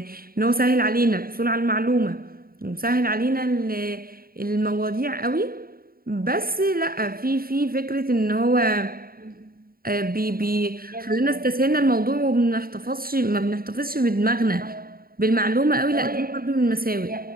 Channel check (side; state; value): left; late; 0.43 ms